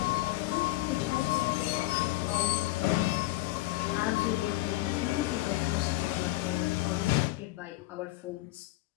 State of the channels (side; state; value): right; quieter; 17.9 dB